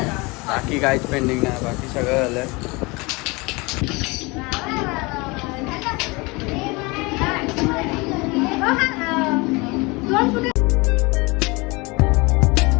बाकी काहीच पेंडिंग नाही. बाकी सगळं झालं आहे.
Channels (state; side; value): quieter; right; 25.6 dB